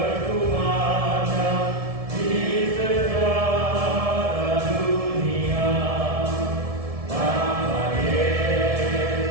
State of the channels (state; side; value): late; left; 1.7 ms